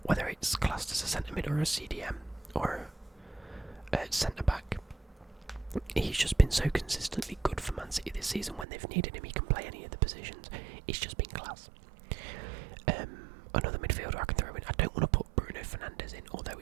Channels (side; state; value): left; drops out; at 8.7 s